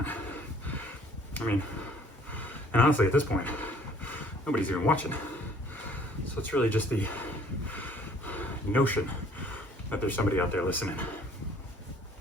I mean, and honestly, at this point, nobody's even watching. So it's really just the notion that there's somebody out there listening.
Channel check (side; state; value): both; normal; correlation 0.57